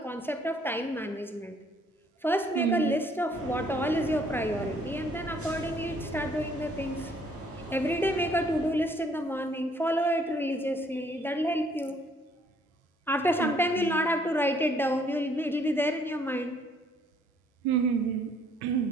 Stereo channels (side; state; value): both; normal; correlation 0.64